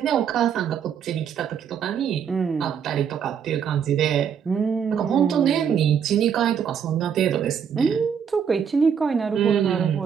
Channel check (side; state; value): left; quieter; 7.7 dB